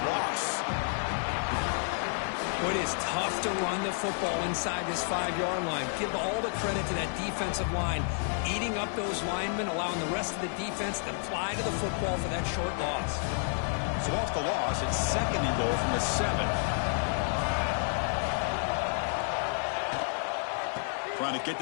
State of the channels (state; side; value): silent; right; 58 dB below the other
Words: loss. It is tough to run the football inside this 5-yard line. Give all the credit to that defensive line, eating up those linemen, allowing the rest of the defense to fly to the football for that short loss. So off the loss, it's 2nd and goal from the 7. Trying to get